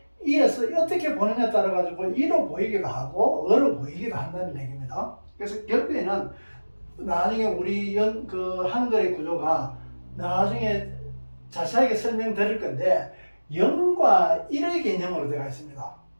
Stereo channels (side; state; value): both; inverted; correlation -1.00